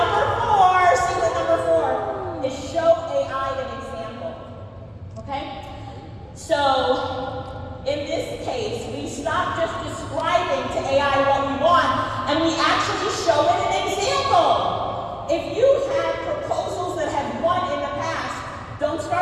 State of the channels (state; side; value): identical; both; correlation 1.00